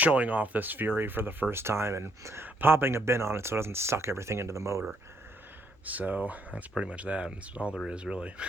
off this Fury for the first time and popping a bin on it so it doesn't suck everything into the motor. So that's pretty much that. That's all there is, really.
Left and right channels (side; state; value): both; normal; correlation 0.71